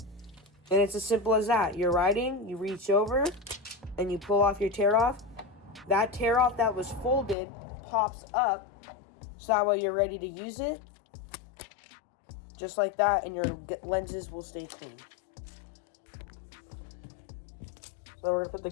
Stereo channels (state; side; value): drops out; right; at 7.4 s